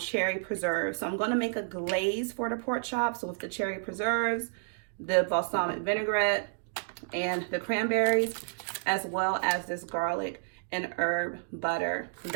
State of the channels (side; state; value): left; silent; digital silence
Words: preserves. So I'm going to make a glaze for the pork chops with the cherry preserves, the balsamic vinaigrette, and the cranberries, as well as this garlic and herb butter